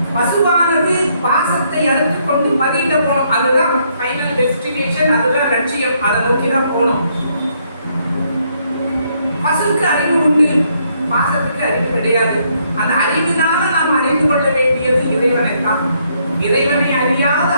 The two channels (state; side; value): inverted; both; correlation -0.72